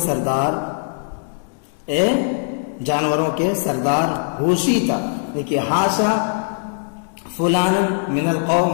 اے جانوروں کے سردار، ہوشیتا دیکھیے ہاشا فلان من القوم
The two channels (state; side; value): silent; right; digital silence